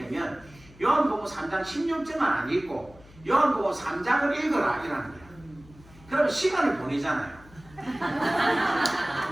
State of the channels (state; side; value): noise; left; hum, 24 dB below the sound